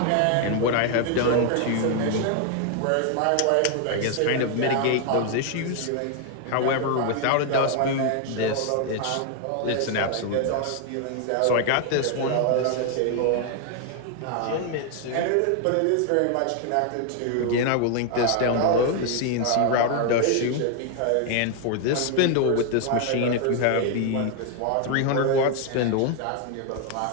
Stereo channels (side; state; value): both; different; correlation 0.00